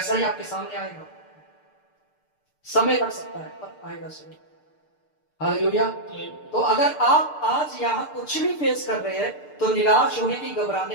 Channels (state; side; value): late; right; 6.7 ms